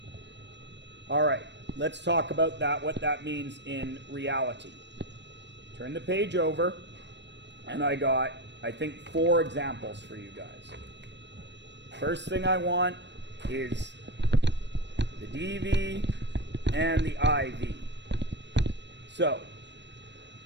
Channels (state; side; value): late; left; 0.52 ms